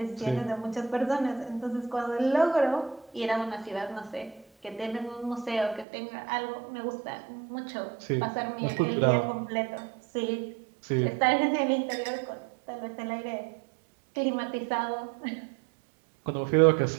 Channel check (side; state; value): left; drops out; at 5.9 s